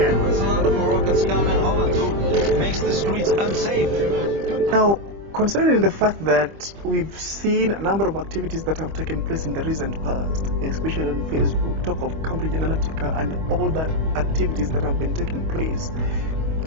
There's a lot of Moroccans coming home and makes the streets unsafe. Now, Considering the fact that we've seen a number of activities that have taken place in the recent past, especially on Facebook, talk of Cambridge Analytica and all the activities that have been taking place,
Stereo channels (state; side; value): late; left; 25 ms